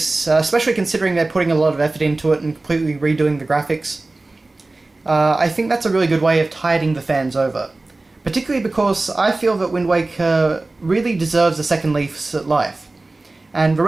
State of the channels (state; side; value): quieter; left; 3.1 dB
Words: especially considering they're putting a lot of effort into it and completely redoing the graphics, I think that's a really good way of tiding the fans over. Particularly because I feel that Wind Waker really deserves a second lease at life. And the